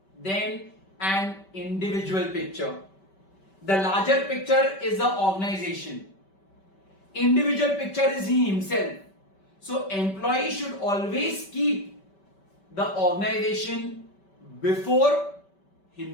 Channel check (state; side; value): late; right; 5.2 ms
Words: than an individual picture. The larger picture is the organization. Individual picture is he himself. So employee should always keep the organization before